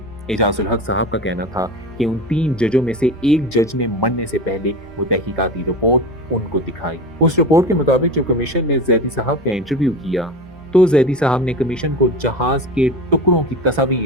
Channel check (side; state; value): both; normal; correlation 0.28